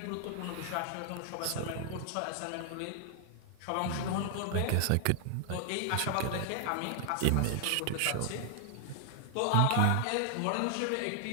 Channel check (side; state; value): both; different; correlation 0.00